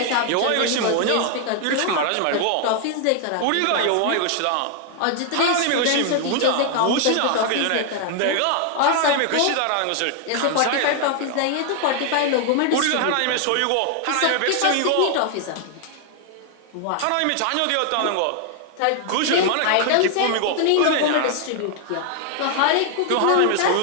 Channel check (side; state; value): both; different; correlation 0.00